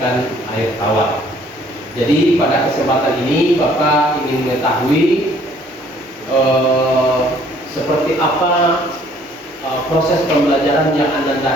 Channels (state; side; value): normal; both; correlation 0.59